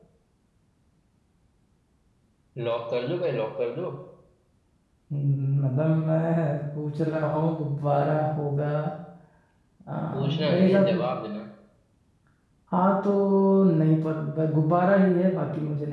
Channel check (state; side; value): identical; both; correlation 1.00